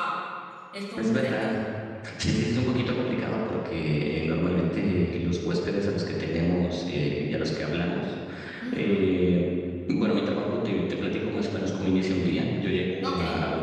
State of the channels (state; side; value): identical; both; correlation 1.00